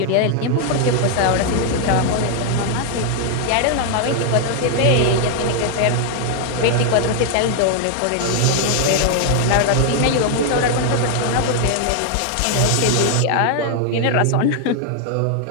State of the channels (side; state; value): both; different; correlation 0.00